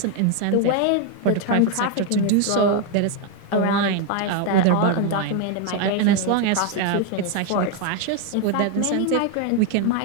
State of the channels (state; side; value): different; both; correlation 0.01